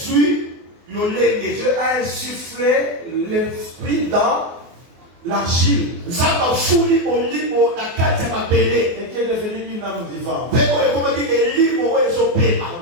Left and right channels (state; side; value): late; left; 24 ms